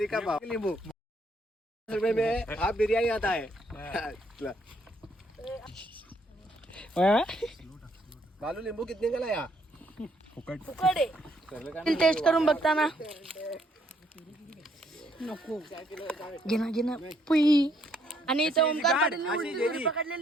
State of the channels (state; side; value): normal; both; correlation 0.70